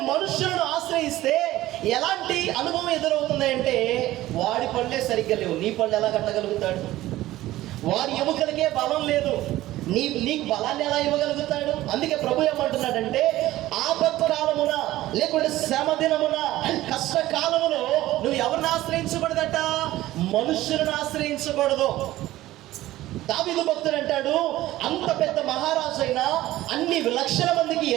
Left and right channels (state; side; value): quieter; left; 15.9 dB